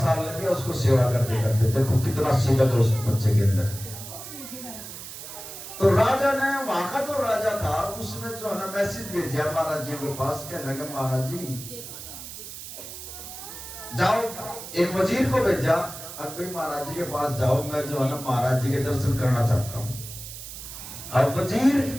लग गया उसको सेवा करते करते। देखो कितना सेवक है उस बच्चे के अंदर। तो राजा ने, वहां का जो राजा था, उसने जो है ना मैसेज भेजा महाराज जी के पास, कहने लगा महाराज जी जाओ, एक वजीर को भेजा, अब भाई महाराज जी के पास जाओ, मैं जो है ना महाराज जी के दर्शन करना चाहता हूं। और वजीर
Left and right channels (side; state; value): right; noise; hiss, 11 dB below the sound